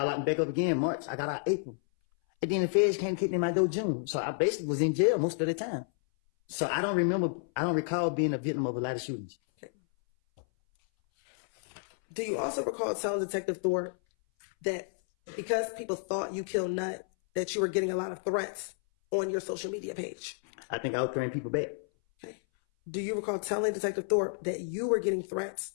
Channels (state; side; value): silent; right; 57 dB below the other